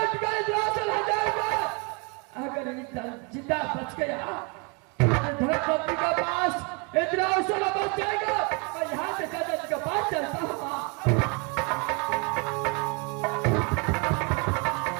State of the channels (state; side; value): quieter; left; 31.5 dB